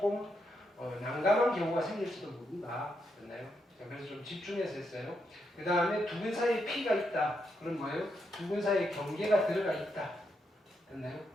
난감한 경우가 생길지도 모른다. 됐나요? 그래서 좀 집중해서 했어요. 그 다음에 두 근 사이에 P가 있다. 그럼 뭐예요? 두 근 사이에 경계가 들어가 있다. 됐나요?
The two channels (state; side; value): normal; both; correlation 0.81